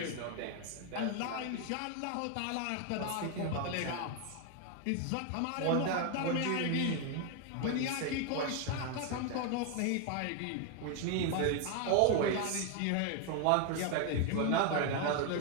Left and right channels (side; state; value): both; different; correlation 0.01